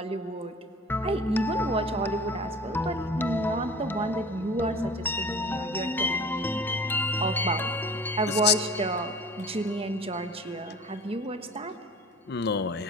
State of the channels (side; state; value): both; normal; correlation 0.41